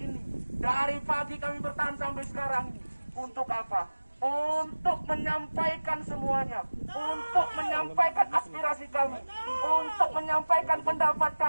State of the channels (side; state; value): both; inverted; correlation -1.00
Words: Dari pagi kami bertahan sampai sekarang ini. Untuk apa? Untuk menyampaikan semuanya. Untuk menyampaikan aspirasi kami. Untuk menyampaikan pendapat